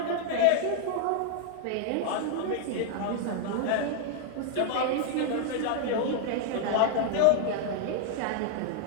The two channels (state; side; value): different; both; correlation 0.00